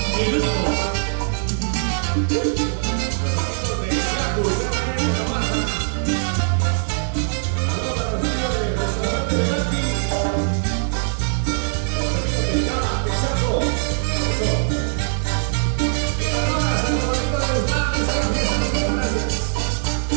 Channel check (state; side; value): silent; left; digital silence